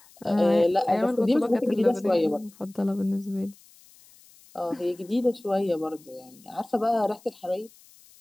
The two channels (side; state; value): left; noise; hiss, 26 dB below the sound